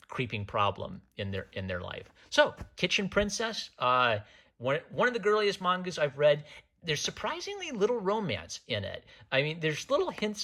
creeping problem in their life. So Kitchen Princess, one of the girliest mangas I've read. There's surprisingly little romance in it. I mean, there's little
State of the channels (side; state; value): both; identical; correlation 1.00